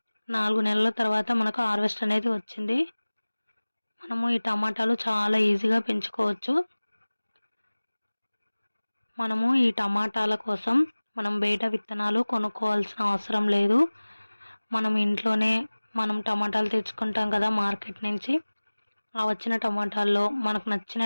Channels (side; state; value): both; inverted; correlation -1.00